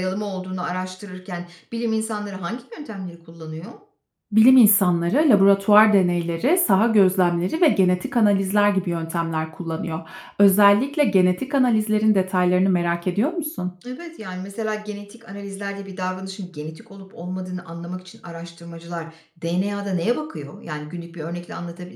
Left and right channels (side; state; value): both; identical; correlation 1.00